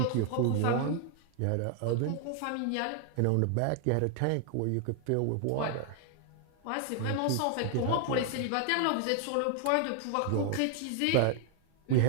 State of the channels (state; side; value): different; both; correlation 0.00